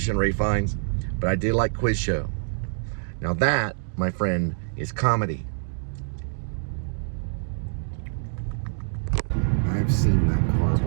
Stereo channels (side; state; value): left; silent; digital silence